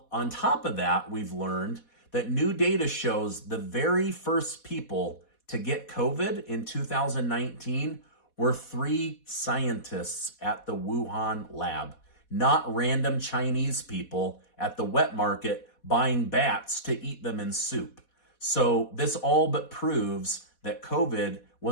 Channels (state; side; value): late; right; 4.1 ms